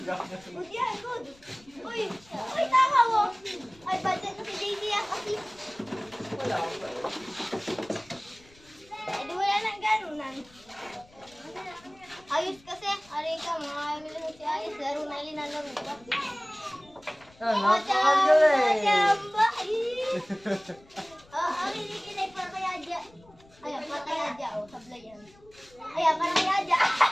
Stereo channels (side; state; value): left; noise; rumble, 27 dB below the sound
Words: Good yan, good. Uy, tama mo. Ay, budget na si JD yan kasi. Wala pa eh. Eh, di wala nang ganunan. Ayos kasi. Aray ka, mga amil si Ayos. Laro na linalaro pa. Ah, napakagaling. Chamba! Ang hinikinay para kay Adja. Ayan, para kay Adja. O, sablay yan. Ayan, para kay Adja.